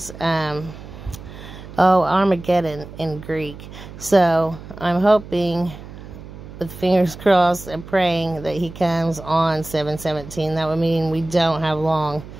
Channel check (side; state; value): right; noise; hum, 15 dB below the sound